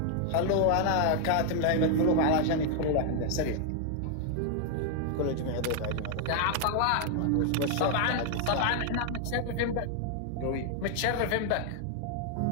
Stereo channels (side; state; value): both; different; correlation 0.00